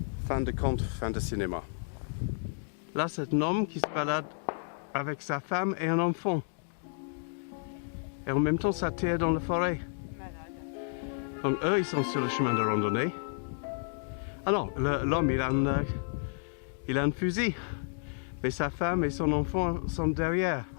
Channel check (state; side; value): silent; right; digital silence